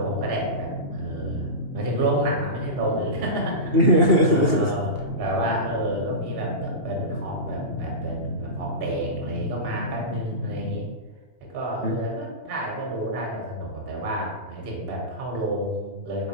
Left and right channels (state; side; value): late; left; 2.8 ms